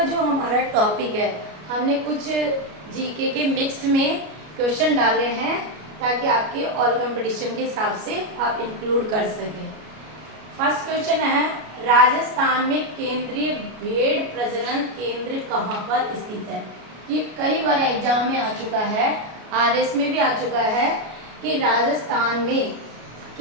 जो हमारा टॉपिक है, हमने कुछ जीके के मिक्स में क्वेश्चन डाले हैं ताकि आपके ऑल कंपटीशन के हिसाब से आप इंक्लूड कर सकें। फर्स्ट क्वेश्चन है, राजस्थान में केंद्रीय भेड़ प्रजनन केंद्र कहाँ पर स्थित है। ये कई बार एग्जाम में आ चुका है, आरएस में भी आ चुका है कि राजस्थान में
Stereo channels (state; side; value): late; left; 33 ms